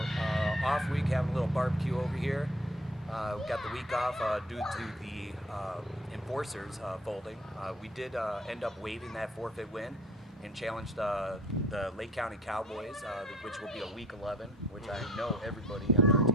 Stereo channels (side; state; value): both; normal; correlation 0.51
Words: off week, having a little barbecue over here. We got the week off due to the enforcers folding. We did end up waiving that forfeit win and challenged the Lake County Cowboys, which will be a week 11, which I know everybody on our